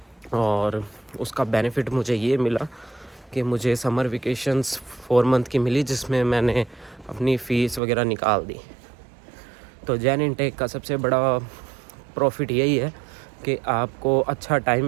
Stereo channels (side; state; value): left; drops out; at 7.8 s